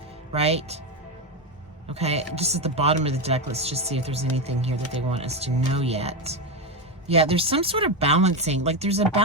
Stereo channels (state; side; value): normal; both; correlation 0.11